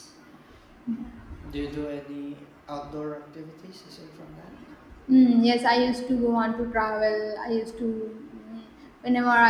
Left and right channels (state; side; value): identical; both; correlation 1.00